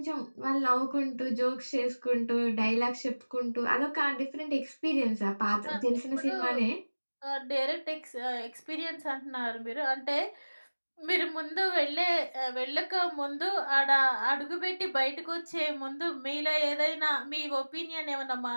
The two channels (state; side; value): inverted; both; correlation -1.00